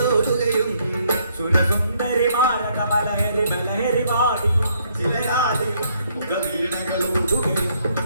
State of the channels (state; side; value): inverted; both; correlation -0.70